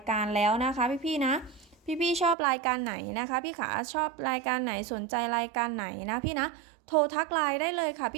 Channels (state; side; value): drops out; left; at 2.4 s